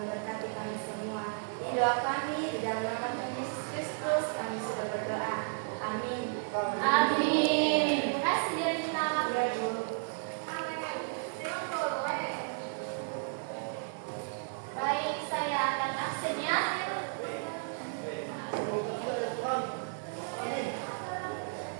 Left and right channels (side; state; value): left; silent; 56 dB below the other